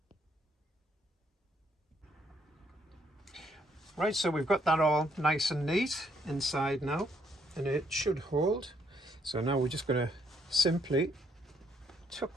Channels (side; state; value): both; normal; correlation 0.71